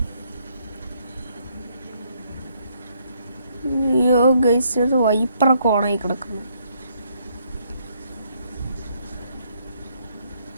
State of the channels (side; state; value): both; inverted; correlation -0.70